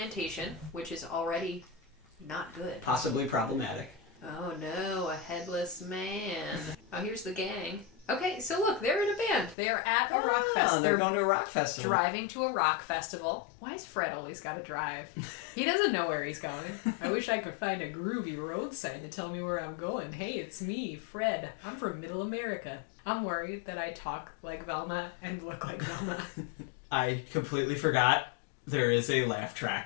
which is already... not good. Possibly problematic. Oh no, a headless man. Oh, here's the gang. Okay, so look, they're in a band. They're at a rock festival. They're going to a rock festival. Driving to a rock festival. Why has Fred always got to drive? He doesn't know where he's going. I wish I could find a groovy road sign to tell me where I'm going. Hey, it's me, Fred. I'm from Middle America. I'm worried that I talk like Velma and look like Velma. I completely forgot there is a laugh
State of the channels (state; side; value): drops out; right; at 9.6 s